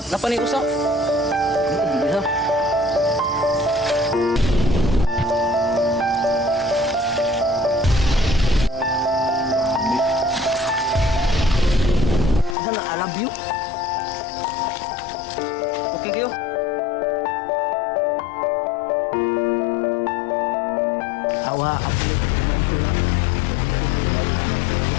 ni usa? Bisa. Sana I love you. Okay kayo. Awa, aku ni teman tu lah.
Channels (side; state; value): right; drops out; at 12.6 s